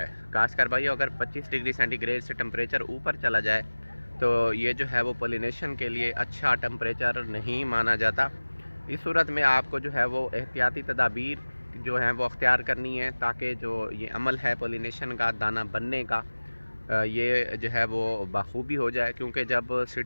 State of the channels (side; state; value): both; inverted; correlation -1.00